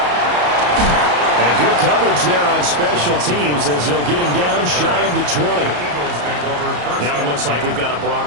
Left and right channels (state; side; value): late; left; 34 ms